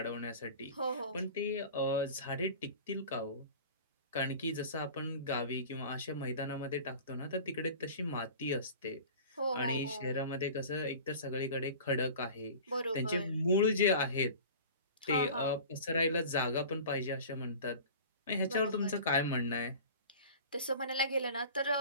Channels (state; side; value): inverted; both; correlation -0.39